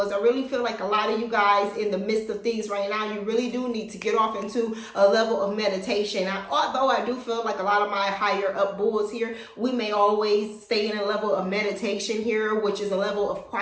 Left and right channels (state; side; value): identical; both; correlation 1.00